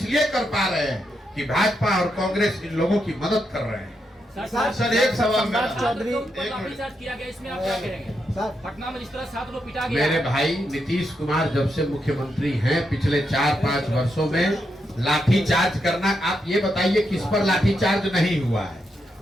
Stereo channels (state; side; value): normal; both; correlation 0.82